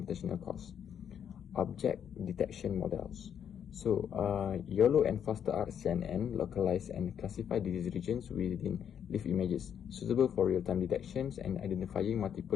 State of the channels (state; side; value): quieter; right; 8.6 dB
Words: costs. Object detection models. So, YOLO and FasterR CNN localize and classify disease regions within leaf images, suitable for real-time detections and identifying multiple